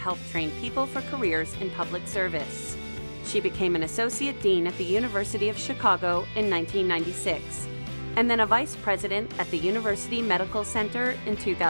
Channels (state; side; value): inverted; both; correlation -1.00